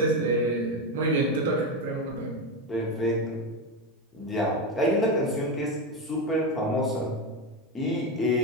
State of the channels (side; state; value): both; normal; correlation 0.14